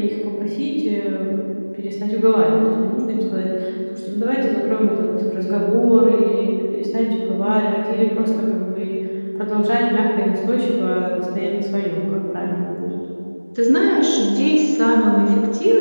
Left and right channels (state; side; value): inverted; both; correlation -1.00